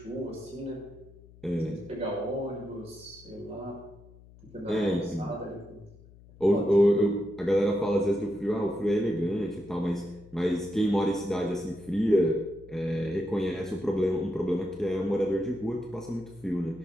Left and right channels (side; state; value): left; noise; hum, 22 dB below the sound